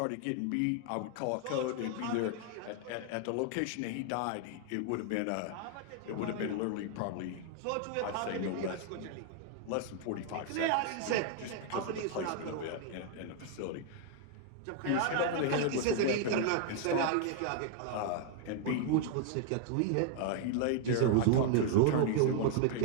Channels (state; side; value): different; both; correlation 0.00